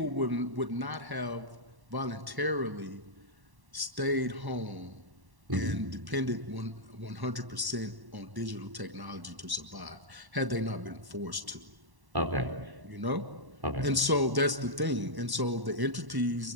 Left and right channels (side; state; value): left; late; 1.1 ms